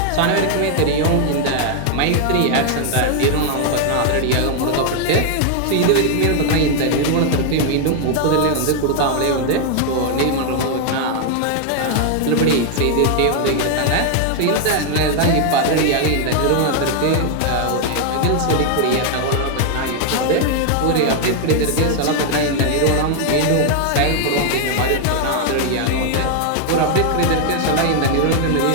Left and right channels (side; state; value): both; different; correlation 0.00